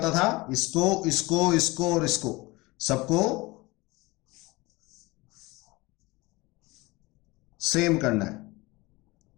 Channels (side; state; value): right; quieter; 22.6 dB